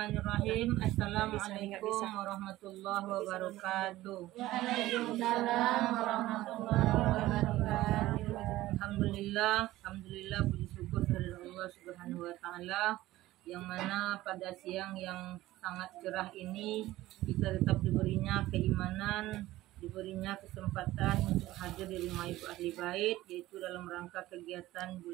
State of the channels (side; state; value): left; quieter; 16.4 dB